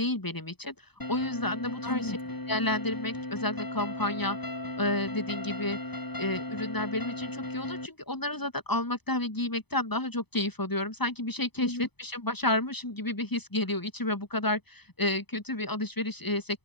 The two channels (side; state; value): right; late; 0.98 ms